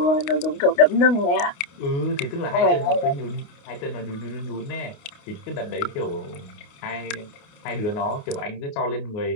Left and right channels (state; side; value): late; right; 28 ms